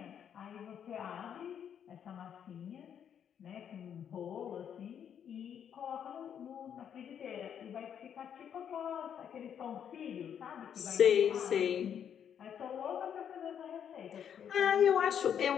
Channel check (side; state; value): right; quieter; 8.6 dB